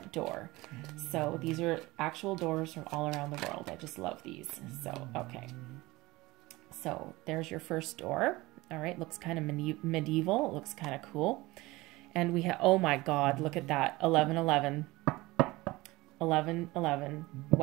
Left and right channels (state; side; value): quieter; left; 20.7 dB